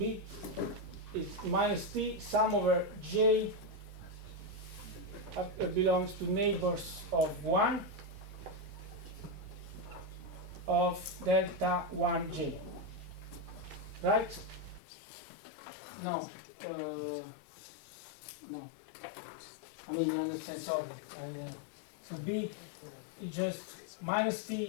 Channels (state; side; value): drops out; right; at 14.8 s